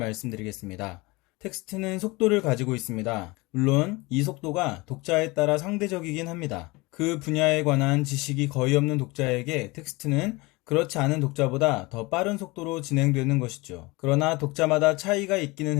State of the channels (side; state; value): right; quieter; 23.8 dB